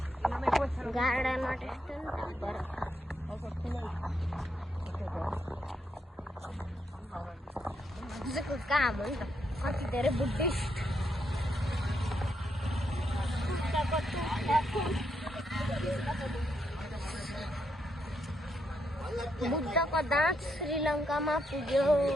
गार्डनमा त्यस्तो नि काम हो नि त. कति धेरै बुद्धिस्ट बुद्धको दाँत श्रीलङ्कामा पुग्यो.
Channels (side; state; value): both; normal; correlation 0.79